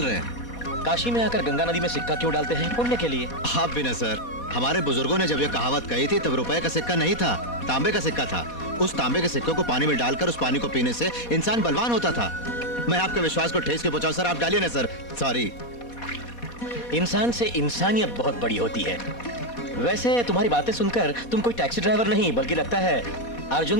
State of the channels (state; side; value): late; right; 4.2 ms